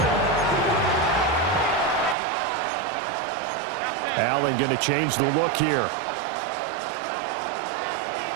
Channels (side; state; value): left; drops out; at 2.1 s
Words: Allen going to change the look here.